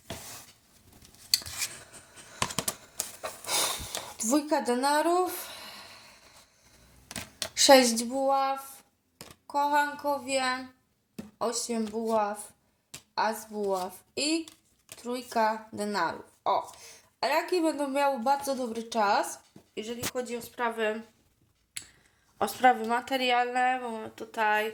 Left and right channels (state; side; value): identical; both; correlation 1.00